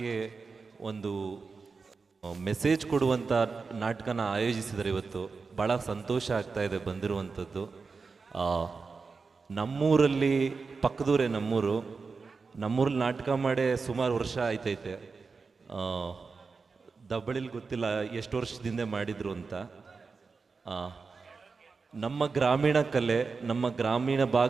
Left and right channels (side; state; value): left; quieter; 4.6 dB